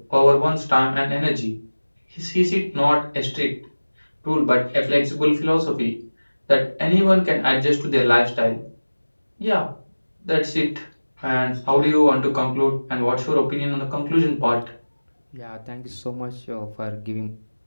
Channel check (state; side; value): inverted; both; correlation -1.00